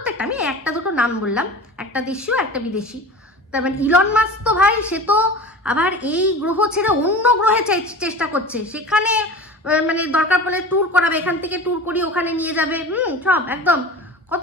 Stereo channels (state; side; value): normal; both; correlation 0.35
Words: আমি একটা দুটো নাম বললাম, একটা দেশীয় একটা বিদেশি। তার মানে ইলন মাস্ক তো ভাই, সে তো আবার এই গ্রহ ছেড়ে অন্য গ্রহে চেষ্টা করছে, সেখানে মানে দরকার পড়লে ট্যুর করাবে, এখান থেকে ট্যুর করিয়ে ওখানে নিয়ে যাবে, সব একদম